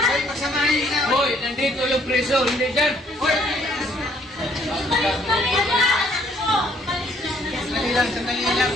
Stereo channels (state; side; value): normal; both; correlation 0.64